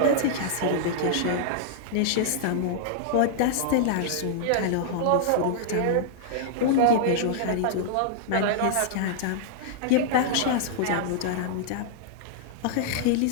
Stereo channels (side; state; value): both; different; correlation -0.01